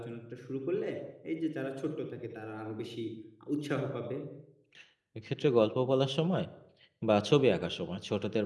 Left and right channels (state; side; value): identical; both; correlation 1.00